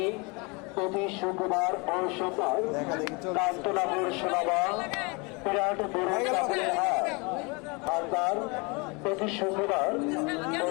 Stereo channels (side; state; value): right; quieter; 29.4 dB